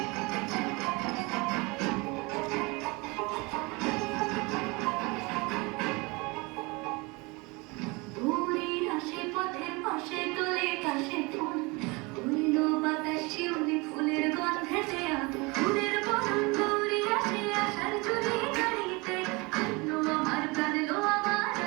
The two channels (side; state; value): left; quieter; 26.3 dB